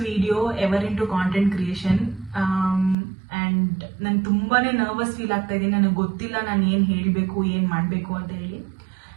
video ever into content creation. And ನಾನು ತುಂಬಾನೇ ನರ್ವಸ್ ಫೀಲ್ ಆಗ್ತಾ ಇದ್ದೀನಿ. ನನಗೆ ಗೊತ್ತಿಲ್ಲ ನಾನು ಏನು ಹೇಳಬೇಕು, ಏನು ಮಾಡಬೇಕು ಅಂತ ಹೇಳಿ.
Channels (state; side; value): drops out; left; at 3.0 s